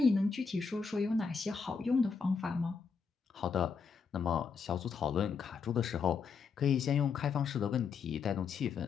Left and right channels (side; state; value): right; quieter; 5.6 dB